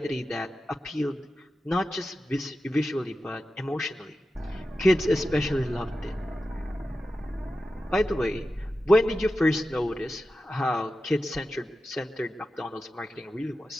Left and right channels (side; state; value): both; normal; correlation 0.92